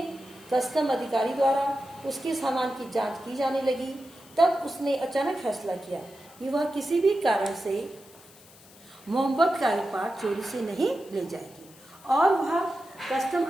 कस्टम अधिकारी द्वारा उसके सामान की जांच की जाने लगी, तब उसने अचानक फैसला किया कि वह किसी भी कारण से मोहब्बत का उपहार चोरी से नहीं ले जाएगी और वह कस्टम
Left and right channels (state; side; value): noise; left; hiss, 24 dB below the sound